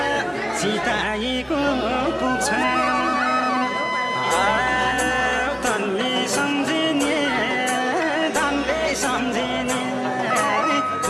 सिताएको पुग्छ तनले सम्झिने धनले सम्झिने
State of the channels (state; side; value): identical; both; correlation 1.00